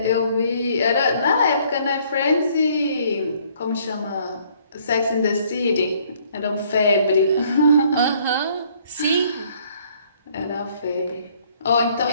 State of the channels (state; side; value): inverted; both; correlation -0.62